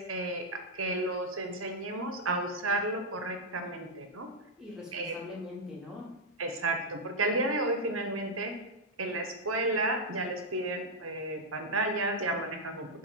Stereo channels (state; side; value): normal; both; correlation -0.03